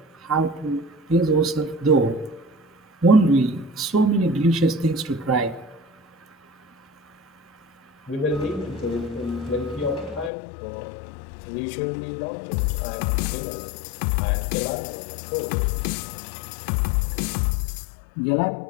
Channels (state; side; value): drops out; right; at 10.3 s